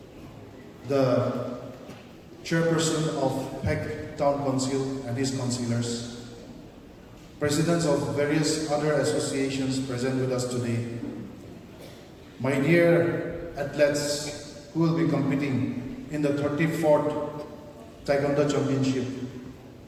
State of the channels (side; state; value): both; identical; correlation 1.00